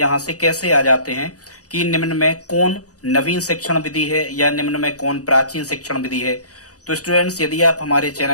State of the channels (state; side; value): late; right; 0.67 ms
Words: से कैसे आ जाते हैं कि निम्न में कौन नवीन शिक्षण विधि है या निम्न में कौन प्राचीन शिक्षण विधि है। तो स्टूडेंट्स, यदि आप हमारे